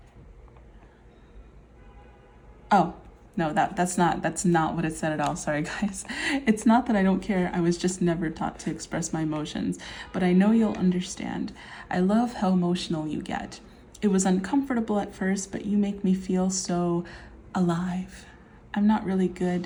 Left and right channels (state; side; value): identical; both; correlation 1.00